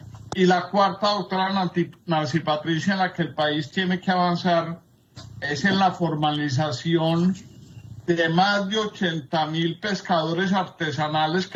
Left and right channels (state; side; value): identical; both; correlation 1.00